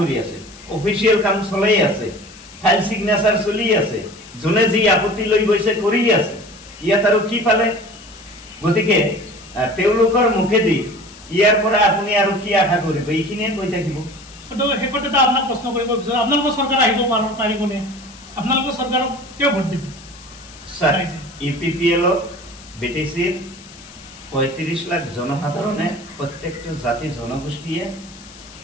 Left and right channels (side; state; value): left; noise; hiss, 21 dB below the sound